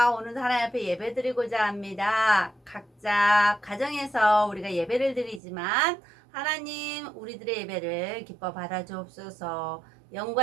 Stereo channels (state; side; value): drops out; left; at 5.4 s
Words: 오늘도 하나님 앞에 예배 드리고자 합니다. 각자 가정에서 우리가 예배를 드리지만 하나님 우리들의 예배를 기뻐 받아주옵소서.